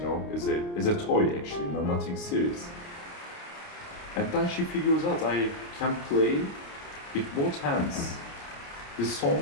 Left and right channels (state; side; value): late; right; 29 ms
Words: as a toy actually, nothing serious. And then she figures out I can play with both hands. The